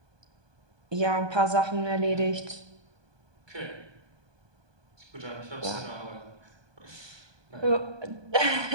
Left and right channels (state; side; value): late; left; 1.2 ms